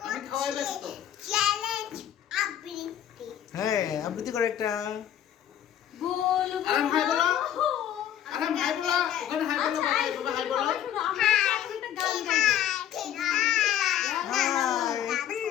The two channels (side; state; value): right; quieter; 10.6 dB